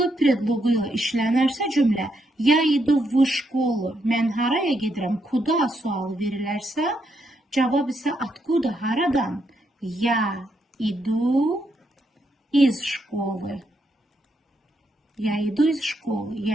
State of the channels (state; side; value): normal; both; correlation 0.79